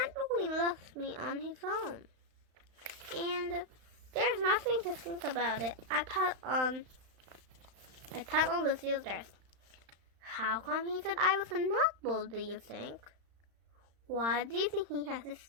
loves me on his own. And there's nothing to think about it. I thought on Lucille's dress. How come he said I was a nutball, do you think? Why do you think he has to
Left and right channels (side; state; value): left; late; 35 ms